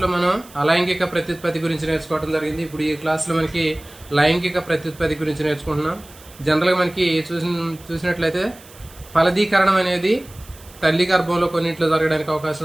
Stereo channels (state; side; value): noise; right; hiss, 22 dB below the sound